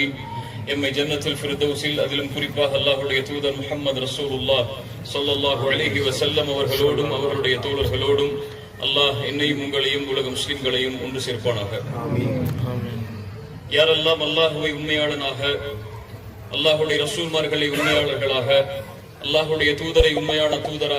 எம்மை ஜன்னத்துல் ஃபிர்தௌஸில், அதிலும் குறிப்பாக அல்லாஹ்வுடைய தூதர் முஹம்மது ரசூலுல்லாஹ் ஸல்லல்லாஹு அலைஹி வஸல்லம் அவர்களோடும் அவர்களுடைய தோழர்களோடும் அல்லாஹ் என்னையும் உங்களையும் உலக முஸ்லிம்களையும் ஒன்று சேர்ப்பானாக. யாரெல்லாம் அல்லாஹுவை உண்மையாளனாக, அல்லாஹுடைய ரசூல்மார்களை உண்மையாளர்களாக, அல்லாஹுடைய தூதரை உண்மையான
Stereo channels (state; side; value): identical; both; correlation 1.00